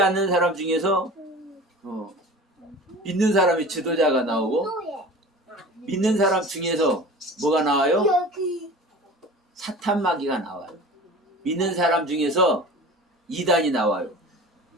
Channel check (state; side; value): normal; both; correlation 0.38